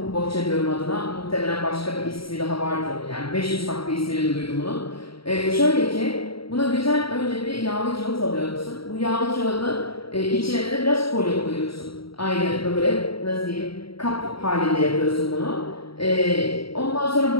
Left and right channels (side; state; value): right; late; 0.75 ms